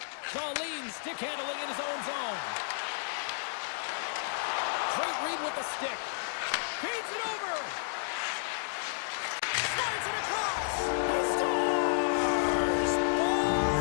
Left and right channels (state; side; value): silent; right; digital silence